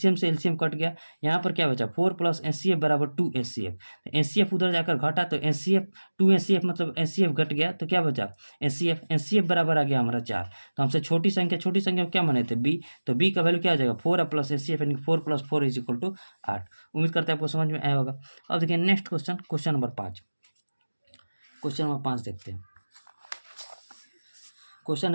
से एलसीएम कट गया, यहाँ पर क्या बचा 4 प्लस एचसीएफ बराबर 2 एचसीएफ। एचसीएफ उधर जाकर घटा तो एचसीएफ 2 एचसीएफ मतलब एचसीएफ घट गया, तो क्या बचा एचसीएफ बराबर आ गया हमारा 4। तो हमसे छोटी संख्या क्या माने थे b, तो b का वैल्यू क्या आ जाएगा 4 प्लस एचसीएफ यानी 4 प्लस 4 इज इक्वल टू 8। उम्मीद करते हैं आपको समझ में आया होगा। अब देखिए next question, question number 5। Question number 5 देखते हैं। क्वेश्चन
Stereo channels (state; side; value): inverted; both; correlation -1.00